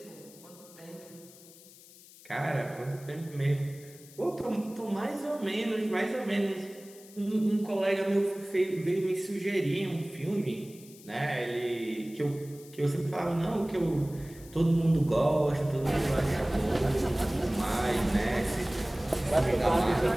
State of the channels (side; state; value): left; noise; hiss, 21 dB below the sound